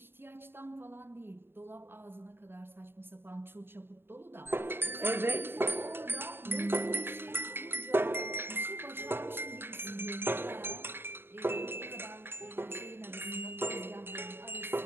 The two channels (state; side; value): late; left; 0.11 ms